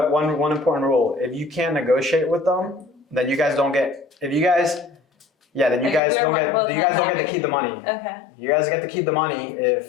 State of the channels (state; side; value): drops out; right; at 6.0 s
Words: important rule. If you can't negotiate with them, then you guys don't get, then you guys don't get to keep the money. Okay. You guys get to keep the money